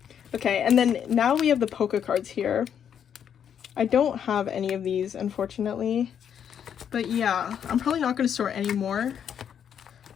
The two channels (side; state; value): right; quieter; 8.5 dB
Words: Okay, and then now we have the polka cards here. I don't have any of these, unfortunately. But yeah, I'm probably not going to store any more